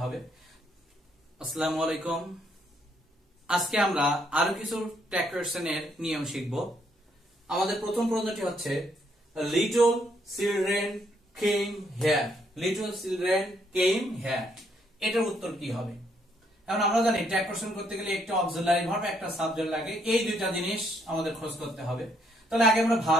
হবে। আসসালামু আলাইকুম। আজকে আমরা আরো কিছু ট্যাগ কোশ্চেনের নিয়ম শিখব। আমাদের প্রথম প্রশ্নটি হচ্ছে little children came here. Little children came here, এটার উত্তর কি হবে? এখন আমরা জানি ট্যাগ কোশ্চেন করতে গেলে একটা অক্সিলারি ভার্ব একটা সাবজেক্ট লাগে, এই দুইটা জিনিস আমাদের খোঁজ করতে হবে। তাহলে আগে আমরা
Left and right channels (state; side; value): normal; both; correlation 0.72